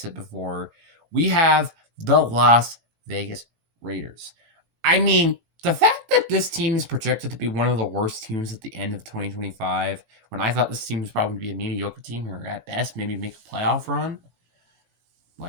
before, we have the Las Vegas Raiders. I mean, the fact that this team is projected to be one of the worst teams at the end of 2025, when I thought this team was probably going to be a mediocre team, or at best, maybe make a playoff run,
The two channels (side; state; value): left; late; 17 ms